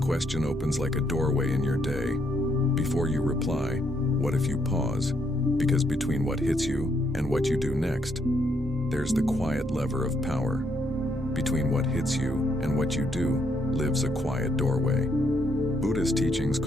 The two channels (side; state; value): both; normal; correlation 0.74